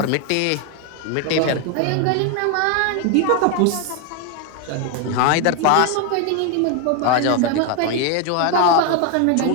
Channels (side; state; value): both; different; correlation 0.01